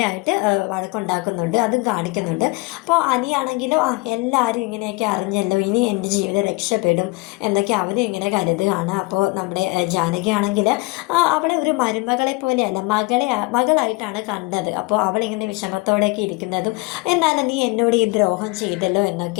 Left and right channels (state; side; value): quieter; right; 25.4 dB